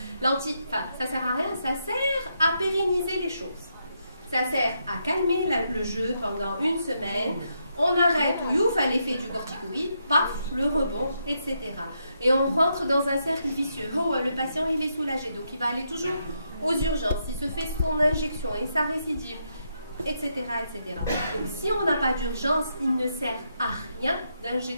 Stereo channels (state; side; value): inverted; both; correlation -0.80